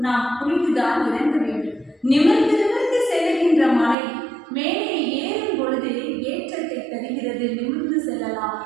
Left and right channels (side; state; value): left; drops out; at 4.0 s